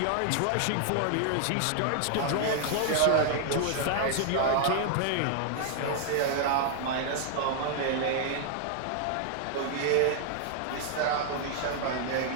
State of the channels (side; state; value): both; different; correlation 0.00